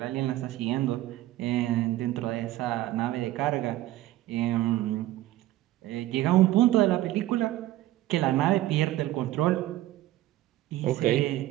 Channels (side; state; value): left; quieter; 15.3 dB